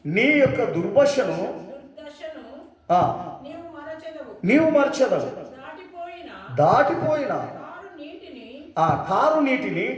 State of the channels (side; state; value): both; identical; correlation 1.00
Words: నీ యొక్క దుర్దశను నీవు మరచెదవు. దాటిపోయిన ఆ కారు నీటిని